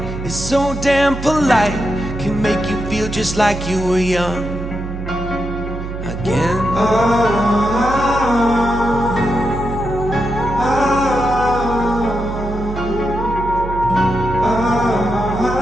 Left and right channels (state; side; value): noise; right; hum, 7 dB below the sound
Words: is so damn polite, can make you feel just like you were young again.